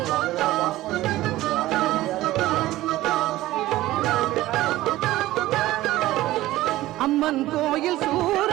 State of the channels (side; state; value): left; quieter; 16.4 dB